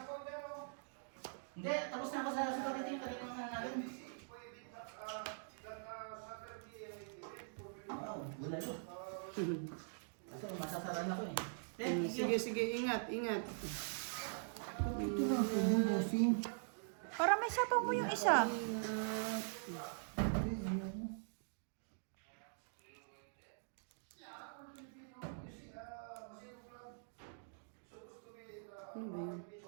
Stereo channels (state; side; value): silent; left; digital silence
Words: Hindi, tapos na ako sa spaghetti yung kanina mga natin. Wow, bulalo. Kasi masasaran ako eh. Thank you. Sige, ingat. Ito na ako yung bossing. Para may sapaw mo yung isa. Ano ba yun?